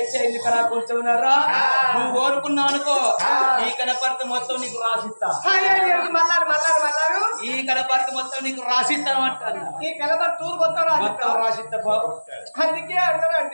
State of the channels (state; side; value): inverted; both; correlation -1.00